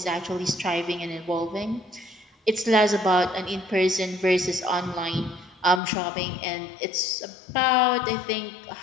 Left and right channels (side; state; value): right; drops out; at 5.8 s